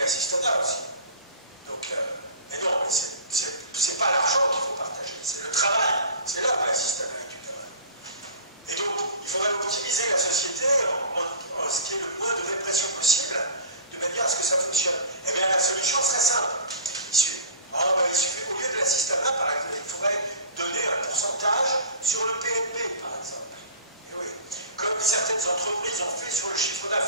aussi. Donc, mais non, c'est pas l'argent qu'il faut partager, c'est le travail. C'est là où l'assistanat est du travail. Et donc, il faudrait optimiser la société en ce qui est le moins de répression possible, de manière à ce que ça fonctionne. Eh bien, la solution serait simple. Il suffit, au lieu de l'assistanat, par exemple, il faudrait donner un pourcentage sur le PNB, par exemple. Et oui. Comme certaines entreprises ont fait sur le chiffre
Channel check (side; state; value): both; inverted; correlation -0.36